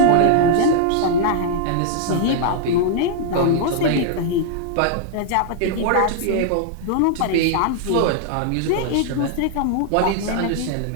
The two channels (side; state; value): both; different; correlation -0.01